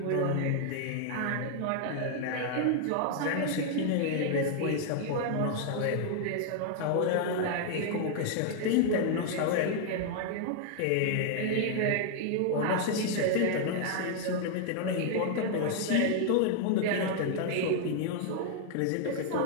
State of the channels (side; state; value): both; different; correlation 0.00